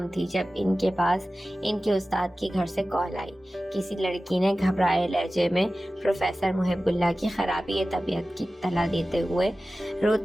تھی جب ان کے پاس ان کے استاد کے گھر سے کال آئی۔ کسی لڑکی نے گھبرائے لہجے میں پروفیسر محب اللہ کی خرابی طبیعت کی اطلاع دیتے ہوئے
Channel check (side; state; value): both; normal; correlation 0.96